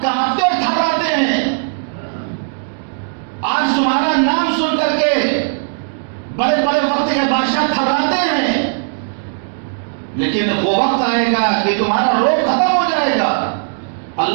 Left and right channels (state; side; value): silent; left; digital silence